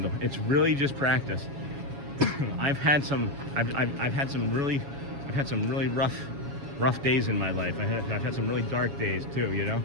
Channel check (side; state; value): left; late; 7.2 ms